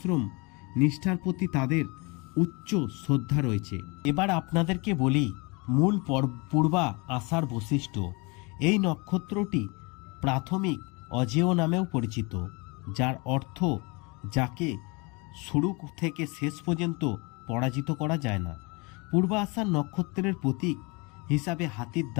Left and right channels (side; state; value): right; quieter; 28.4 dB